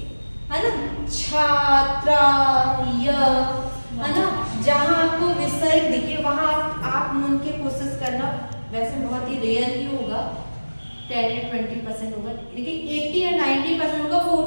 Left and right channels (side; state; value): both; inverted; correlation -1.00